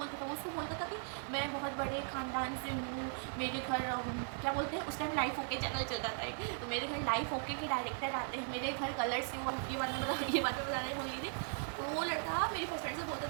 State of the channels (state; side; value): silent; left; 52 dB below the other